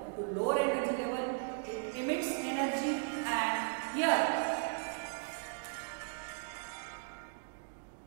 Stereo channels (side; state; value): left; silent; digital silence